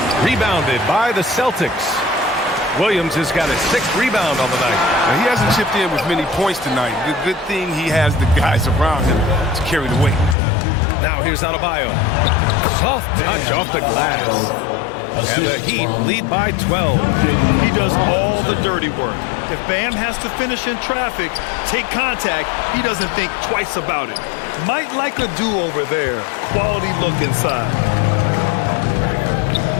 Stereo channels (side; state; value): right; drops out; at 10.4 s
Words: Rebounded by the Celtics. Williams has got his 6th rebound on the night. Now, he hasn't chipped in with many points tonight. Good thing he has the guys around him to carry the weight. Now here's Adebayo. Soft touch off the glass. And the Heat lead by 12. He does all the dirty work. If Bam has to finish in traffic, take contact, he doesn't think twice about it. Might like a do-over there. Quality look inside.